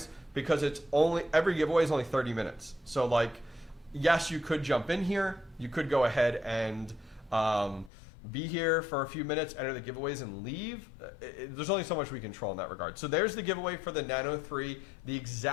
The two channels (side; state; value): right; drops out; at 7.9 s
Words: because it's only every giveaway is only 30 minutes. So like, yes, you could jump in here. You could go ahead and be here for a few minutes, enter the giveaways, and leave. There's only so much we control in that regard. So there's the giveaway for the Nano 3, the